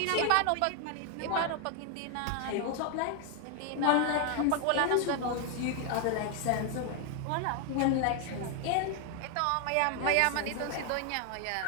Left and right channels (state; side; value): different; both; correlation 0.00